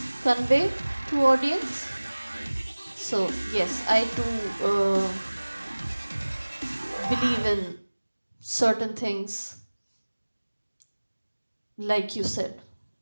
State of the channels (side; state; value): both; inverted; correlation -1.00